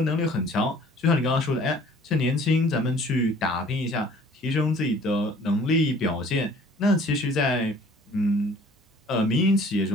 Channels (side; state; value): both; normal; correlation 0.52